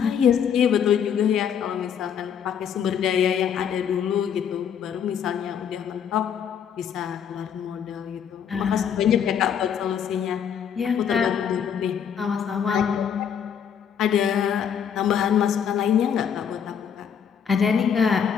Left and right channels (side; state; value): right; quieter; 8.0 dB